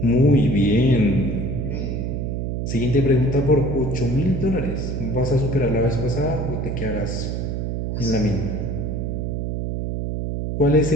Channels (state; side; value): noise; right; hum, 2 dB below the sound